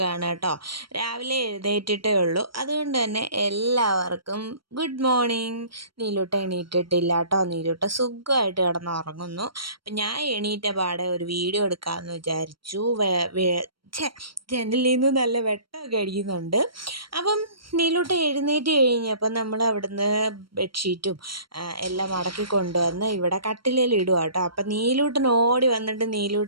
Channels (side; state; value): left; late; 0.74 ms